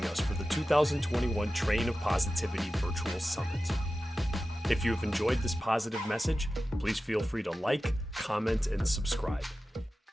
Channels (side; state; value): both; normal; correlation 0.94